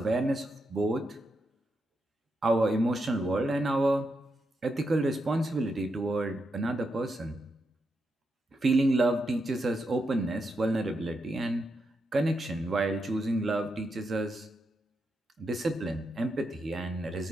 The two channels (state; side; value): normal; both; correlation 0.84